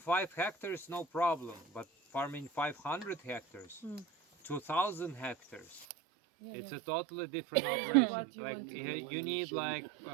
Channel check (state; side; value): drops out; left; at 5.9 s